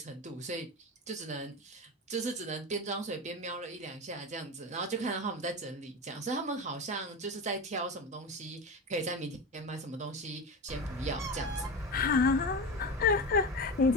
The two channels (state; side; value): normal; both; correlation 0.23